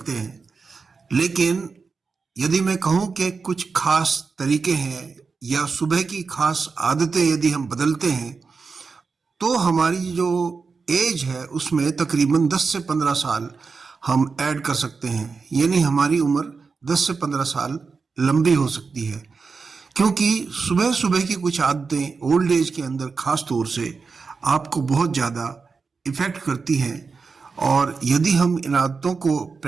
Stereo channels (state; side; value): quieter; left; 4.8 dB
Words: हैं। लेकिन यदि मैं कहूँ कि कुछ खास तरीके हैं या सुबह की खास आदतें यदि हम बदलते हैं तो हमारी जो एज है उसमें तकरीबन 10 से 15 साल हम ऐड कर सकते हैं। यानी हमारी उम्र 10 से 15 साल लंबी हो सकती है, क्योंकि सुबह सुबह की कुछ आदतें ओल्ड एज के अंदर खास तौर से आपको बहुत ज़्यादा इफ़ेक्ट करती हैं। और यदि हम इन आदतों को